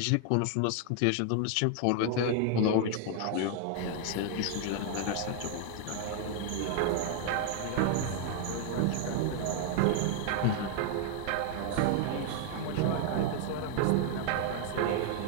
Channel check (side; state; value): both; different; correlation 0.00